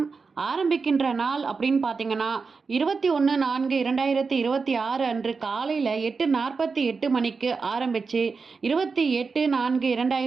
ஆரம்பிக்கின்ற நாள் அப்படின்னு பார்த்தீங்கன்னா 21/4/2026 அன்று காலையில் 8:48 மணிக்கு ஆரம்பித்து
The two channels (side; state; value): left; quieter; 4.8 dB